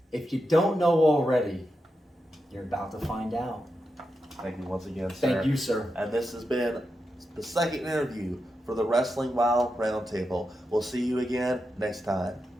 if you don't know already, you're about to find out. Thank you once again, sir. Thank you, sir. And this has been the second interview for the Wrestling Wow Roundtable. We'll see you again next time.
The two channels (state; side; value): normal; both; correlation 0.88